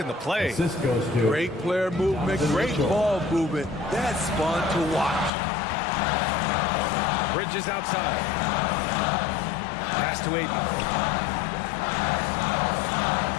the play. Great player movement, great ball movement. That's fun to watch. Bridges outside. Pass to Ayton.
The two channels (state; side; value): drops out; right; at 5.3 s